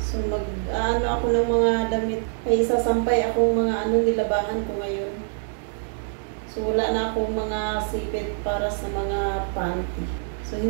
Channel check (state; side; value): silent; left; digital silence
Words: mag-ano ako ng mga damit. Ay sasampay akong mga nilabahan ko ngayon. So wala na akong mga sipit para sa mga panty. So